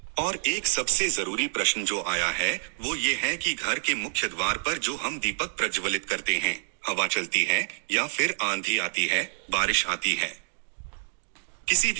और एक सबसे जरूरी प्रश्न जो आया है वो ये है कि घर के मुख्य द्वार पर जो हम दीपक प्रज्वलित करते हैं, हवा चलती है या फिर आंधी आती है, बारिश आती है, किसी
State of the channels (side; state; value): left; silent; digital silence